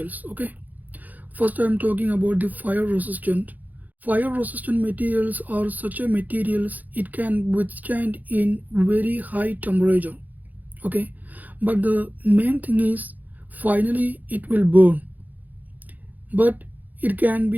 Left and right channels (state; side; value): late; left; 0.082 ms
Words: Okay, first I'm talking about the fire resistant. Fire resistant materials are such a materials it can withstand in very high temperature. Okay, but the main thing is finally it will burn, but it can